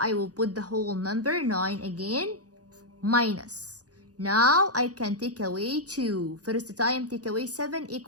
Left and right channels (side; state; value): left; late; 0.67 ms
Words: will put the whole number 9 again, minus. Now I can take away 2. First time take away 7